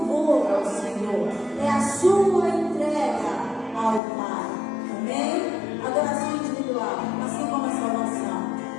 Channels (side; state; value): right; drops out; at 4.0 s